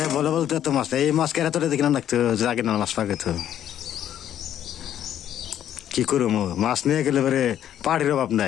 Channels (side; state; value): right; quieter; 10.7 dB